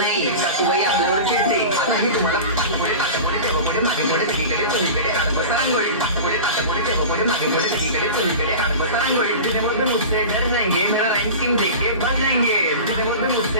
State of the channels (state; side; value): inverted; both; correlation -0.32